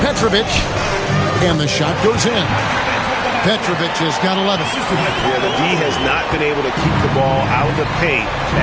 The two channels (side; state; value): both; identical; correlation 1.00